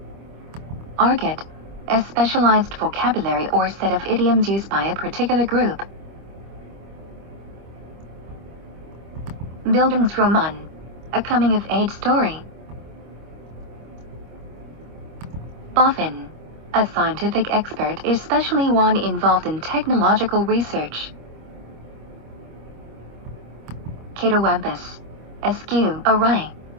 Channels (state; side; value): late; left; 25 ms